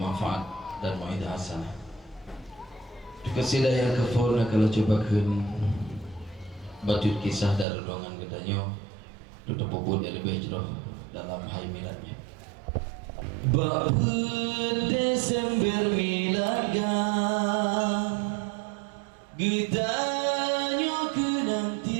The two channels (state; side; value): drops out; left; at 7.7 s